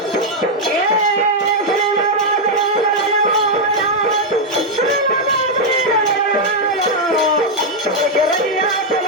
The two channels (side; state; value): both; normal; correlation -0.01